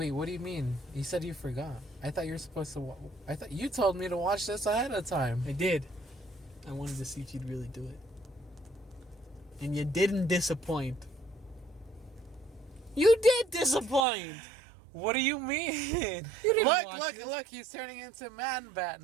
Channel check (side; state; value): left; drops out; at 14.1 s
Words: what do you mean? You said you forgot. I thought you were supposed to. I thought you told me to watch this ahead of time. I did. I wanted to see if you'd really do it. And you didn't disappoint. You did disappoint! What do you mean? You didn't watch Look! this. Look! He's turning into Man Bat